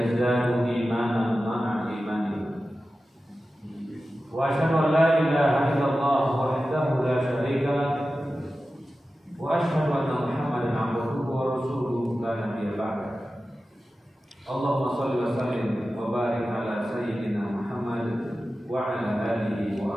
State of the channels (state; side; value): normal; both; correlation 0.94